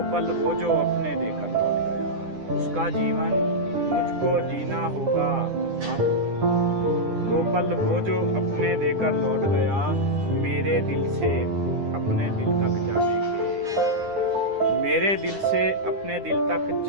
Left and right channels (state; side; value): late; left; 9.9 ms